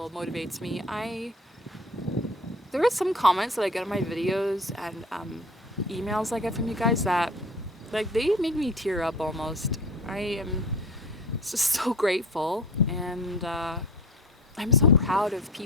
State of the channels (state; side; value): normal; both; correlation 0.40